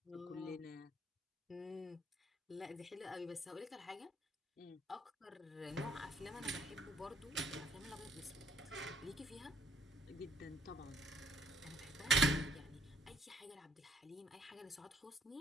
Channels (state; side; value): normal; both; correlation 0.63